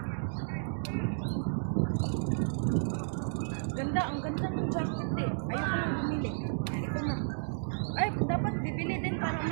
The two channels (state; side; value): silent; left; digital silence